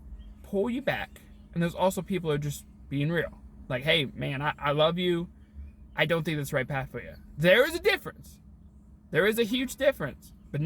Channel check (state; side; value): identical; both; correlation 1.00